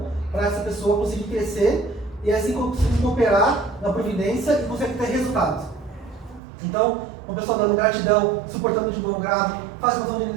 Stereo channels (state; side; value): drops out; left; at 6.4 s